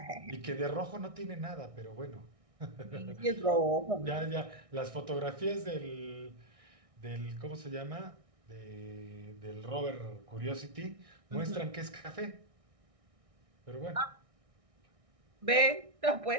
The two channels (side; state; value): left; late; 1.6 ms